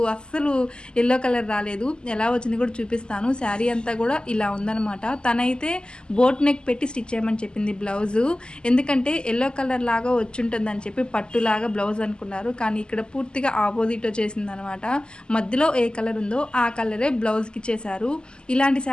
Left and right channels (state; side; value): late; right; 0.048 ms